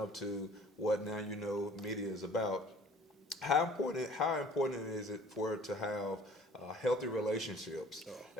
to what Now You Know media is about, how important is it for it to have healthy relationships,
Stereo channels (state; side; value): normal; both; correlation 0.51